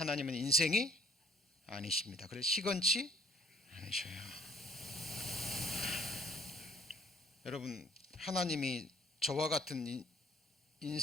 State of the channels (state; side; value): normal; both; correlation 0.58